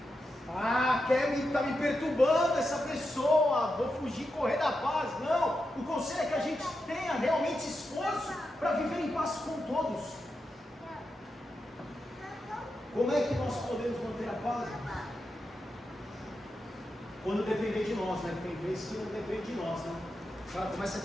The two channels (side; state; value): both; normal; correlation 0.88